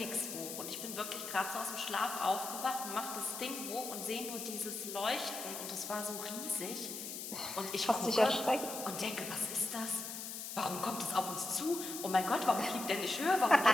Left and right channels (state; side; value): noise; left; hiss, 7 dB below the sound